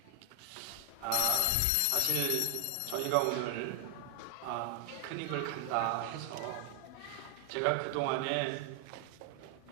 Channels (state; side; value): different; both; correlation 0.00